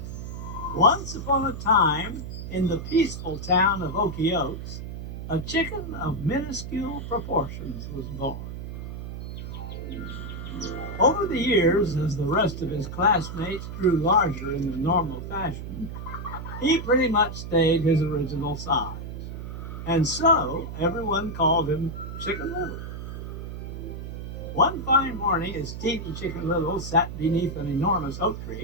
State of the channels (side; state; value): right; noise; hum, 8 dB below the sound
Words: Once upon a time, in the peaceful town of Okie Oaks, a chicken of minuscule proportions was born. Over the years, as the rest of his classmates grew larger in the normal fashion, he pretty much stayed his original size. And so everyone called him Chicken Little. One fine morning, as Teeny Chicken Little sat beneath an enormous oak